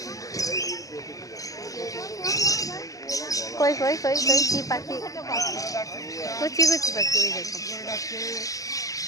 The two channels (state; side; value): late; right; 0.17 ms